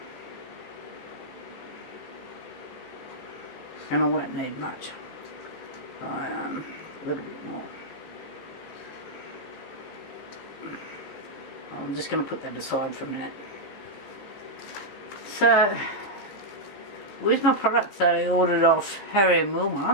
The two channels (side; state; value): right; late; 15 ms